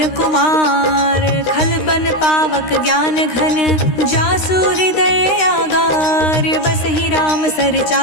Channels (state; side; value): late; right; 13 ms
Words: कुमार खलबन पावक ज्ञान घन जासु हृदय आगार बसहि राम सर